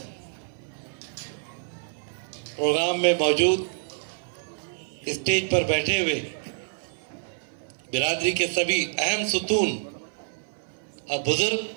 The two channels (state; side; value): silent; left; 60 dB below the other